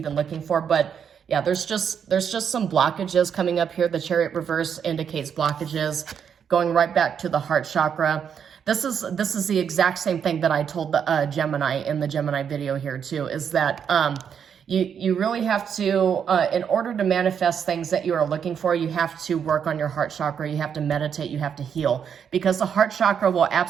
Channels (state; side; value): quieter; left; 7.7 dB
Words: looking for. But Yeah, there's just some blockages coming up here. The Chariot reverse indicates blockages going right back to the heart chakra. This is the exact same thing that I told the Gemini in the Gemini video here too, is that you really have to, in order to manifest things that you are looking for, you have to work on your heart chakra, you have to meditate, you have to heal, because the heart chakra will